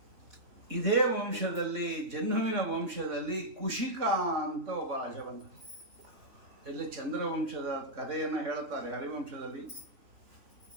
ಇದೇ ವಂಶದಲ್ಲಿ, ಜಹ್ನುವಿನ ವಂಶದಲ್ಲಿ ಕುಶಿಕ ಅಂತ ಒಬ್ಬ ರಾಜ ಬಂದ. ಇಲ್ಲಿ ಚಂದ್ರವಂಶದ ಕಥೆಯನ್ನು ಹೇಳುತ್ತಾರೆ ಹರಿವಂಶದಲ್ಲಿ.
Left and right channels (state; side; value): late; left; 3.5 ms